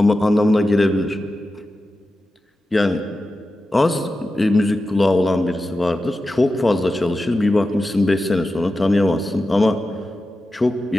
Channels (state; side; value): normal; both; correlation 0.92